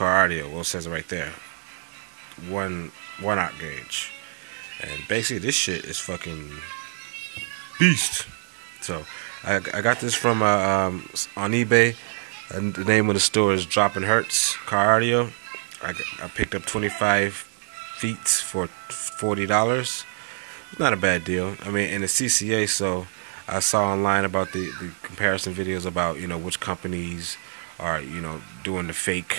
Audio. Well, it says it right there, 1/0 gauge, and basically this shit is fucking beast. So I got this from on eBay. And the name of the store is Dropping Hertz Car Audio. I picked up 25 feet for $40. It's not a bad deal. I mean, in the CCA, so I saw online about the comparison videos about, you know, which companies are, you know, doing the fake,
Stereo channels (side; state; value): left; silent; 62 dB below the other